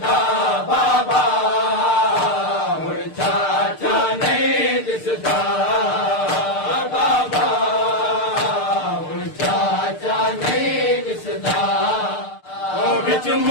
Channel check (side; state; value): right; late; 6.6 ms